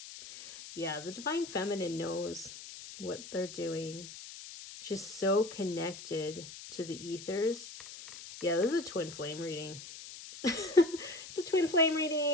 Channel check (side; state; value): left; noise; hiss, 13 dB below the sound